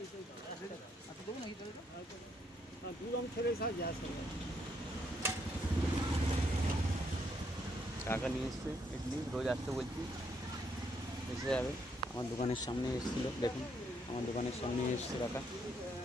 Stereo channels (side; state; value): both; normal; correlation 0.74